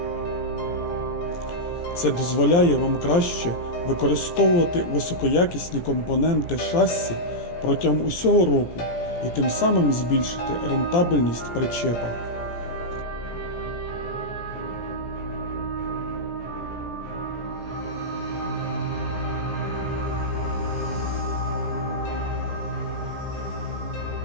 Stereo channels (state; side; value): late; right; 17 ms